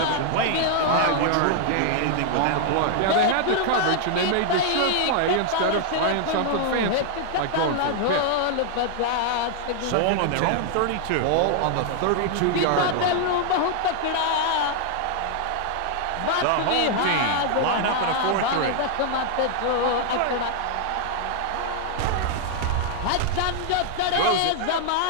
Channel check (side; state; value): both; different; correlation 0.00